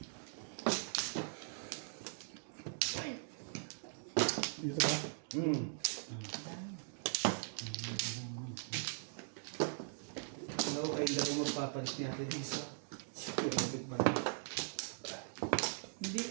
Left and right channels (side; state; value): left; silent; digital silence